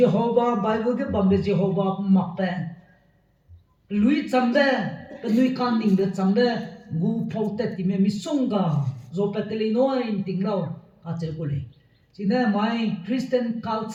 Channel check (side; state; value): both; identical; correlation 1.00